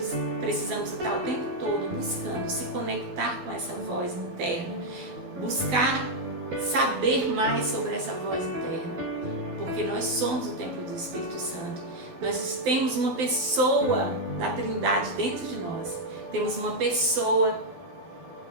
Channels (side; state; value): left; late; 12 ms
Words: precisamos estar o tempo todo buscando se conectar com essa voz interna, buscar saber mais sobre essa voz interna, porque nós somos o templo do Espírito Santo. Nós temos uma pessoa da Trindade dentro de nós, temos uma pessoa